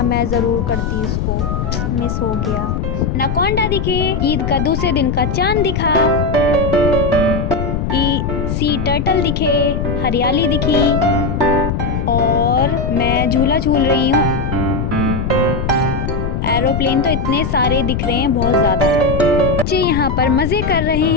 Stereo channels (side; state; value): left; noise; rumble, 1 dB below the sound